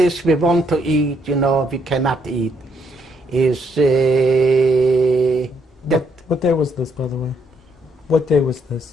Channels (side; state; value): both; normal; correlation 0.73